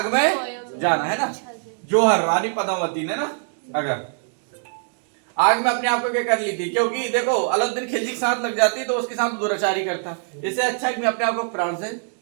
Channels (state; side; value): silent; left; 63 dB below the other